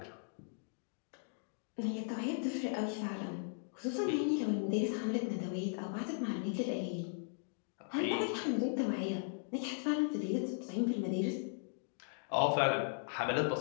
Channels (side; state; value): right; silent; digital silence